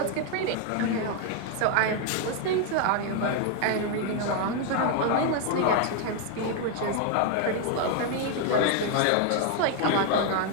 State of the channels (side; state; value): both; different; correlation 0.00